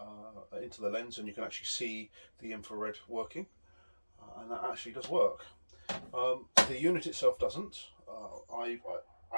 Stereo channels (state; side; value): inverted; both; correlation -1.00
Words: lens, and you can actually see the infrared working, and that actually does work. The unit itself doesn't. I